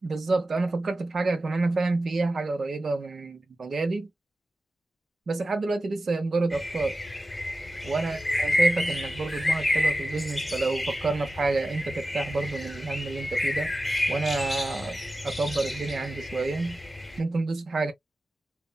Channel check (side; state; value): both; normal; correlation 0.94